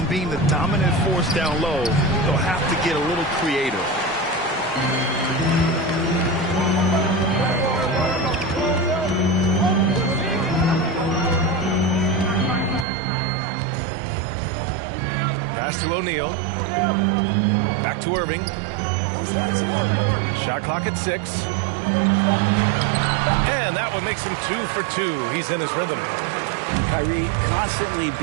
being the dominant force down low. They'll have to get a little creative. Pass to O'Neal. Back to Irving. Shot clock at 6. And that one makes him 2 for 2. He's in his rhythm. Kyrie constantly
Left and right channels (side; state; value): left; drops out; at 12.9 s